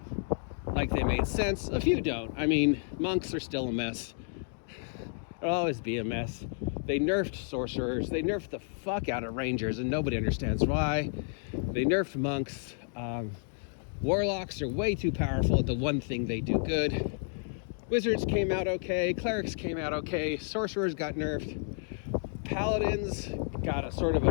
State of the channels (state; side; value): silent; right; 57 dB below the other